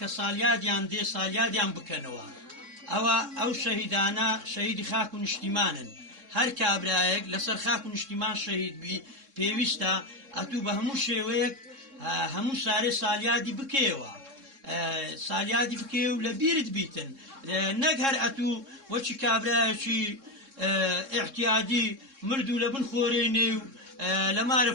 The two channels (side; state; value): left; late; 3.7 ms